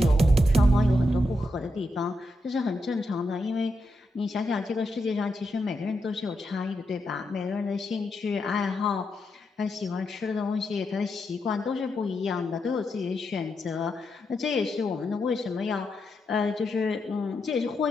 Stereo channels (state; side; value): normal; both; correlation 0.84